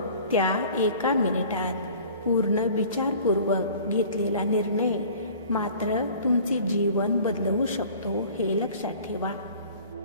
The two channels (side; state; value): both; inverted; correlation -0.46